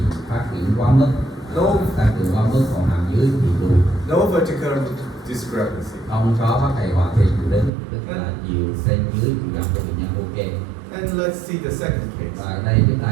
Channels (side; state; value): left; drops out; at 7.7 s